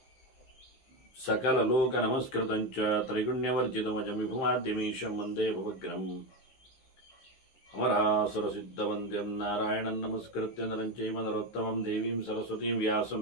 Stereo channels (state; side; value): late; right; 15 ms